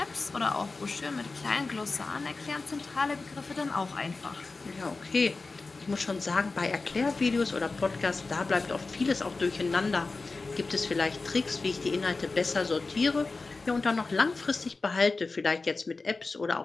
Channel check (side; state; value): right; quieter; 3.8 dB